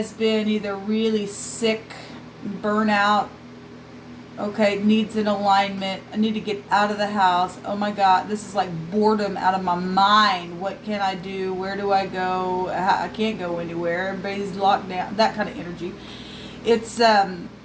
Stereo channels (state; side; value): identical; both; correlation 1.00